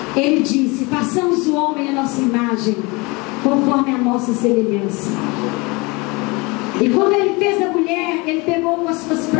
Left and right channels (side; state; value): right; quieter; 26.4 dB